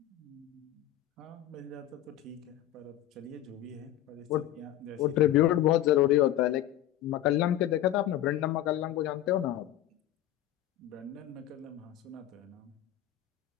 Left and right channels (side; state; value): right; quieter; 12.8 dB